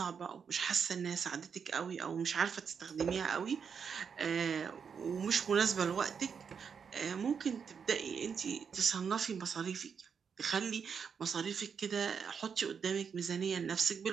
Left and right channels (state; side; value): quieter; left; 6.6 dB